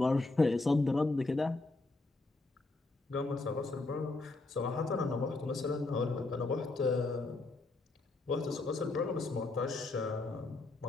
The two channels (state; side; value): quieter; right; 3.2 dB